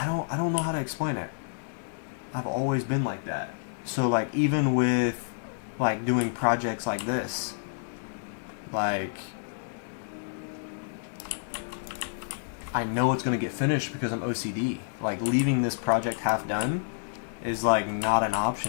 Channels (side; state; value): right; silent; digital silence